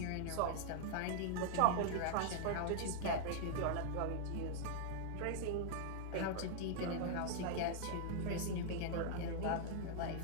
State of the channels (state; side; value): different; both; correlation -0.01